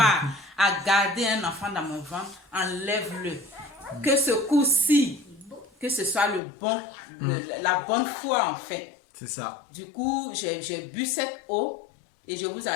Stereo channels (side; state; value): right; drops out; at 6.4 s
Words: à garder un enfant dans mon ventre, enlève-le. Que ce coup-ci, que ce soit la bonne foi en fait. C'est ça. Du coup, j'ai bu cette eau et je vous